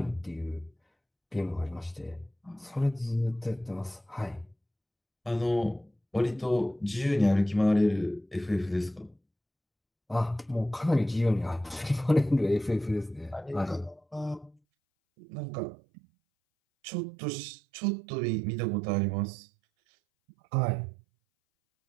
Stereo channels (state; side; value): drops out; left; at 14.6 s